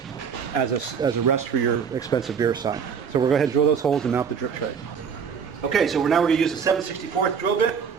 as a rest for your expensive beer sign. So we're going to go ahead and drill those holes and mount the drip tray. Okay, so now we're going to use a 7/64 drill bit.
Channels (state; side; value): quieter; left; 6.7 dB